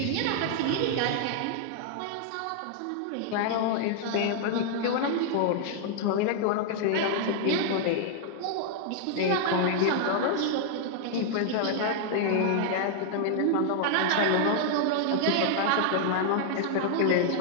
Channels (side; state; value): both; different; correlation -0.01